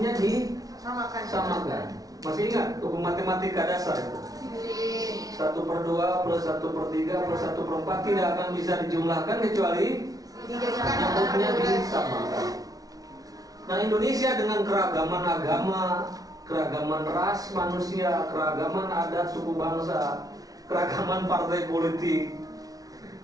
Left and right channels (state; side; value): late; left; 0.18 ms